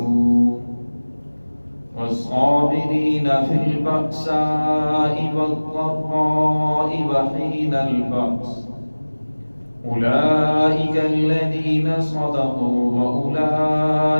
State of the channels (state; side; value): inverted; both; correlation -1.00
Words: والصابرين في البأساء والضراء وحين البأس أولئك الذين صدقوا